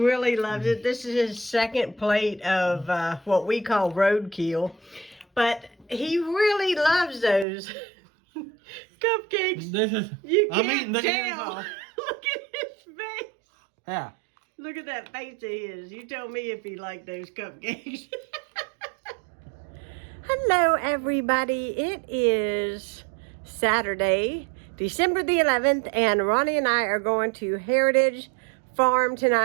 loves it. This is his second plate of what we call roadkill. But he really loves those cupcakes. This is, You I'm can't eating the tell. Look at his face. Yeah. Look at that face of his. You tell me if he liked those cupcakes. Hello, everybody. It is Saturday, December the 11th, and Ronnie and I are going to Heritage Farm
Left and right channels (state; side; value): drops out; left; at 7.5 s